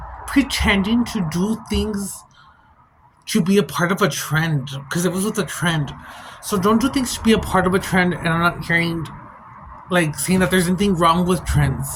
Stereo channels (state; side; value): identical; both; correlation 1.00